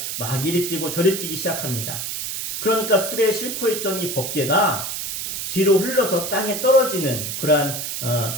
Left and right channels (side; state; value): right; noise; hiss, 4 dB below the sound